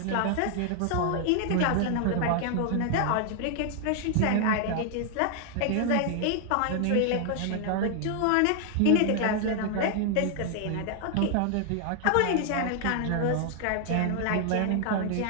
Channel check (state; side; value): different; both; correlation 0.00